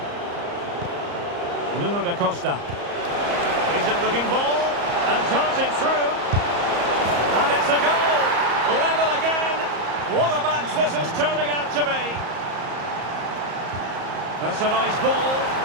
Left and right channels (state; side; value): late; left; 34 ms